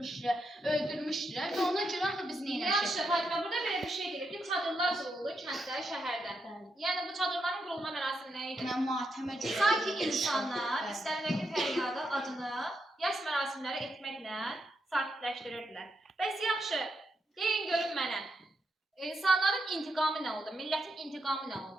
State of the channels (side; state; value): both; normal; correlation 0.83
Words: və ona görə axı biz nə eləmişik? Yaxşı, Fatimə, burada belə bir şey deyir ki, çadırlar qurulur kənddə, şəhərdə. Yəni bu çadırların qurulma mərasimi nə idi? Mən matəmə görə. Sanki insanlar istərindəki fəryadı, adını, yas mərasimləri etməklə sakitləşdirirdilər. Bəs yaxşı, deyin görün mənə. İnsanların intiqamı nə oldu? Millətin intiqamı nə